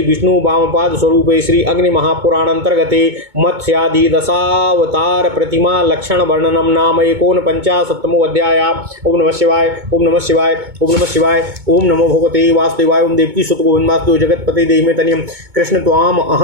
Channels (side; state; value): left; late; 2.2 ms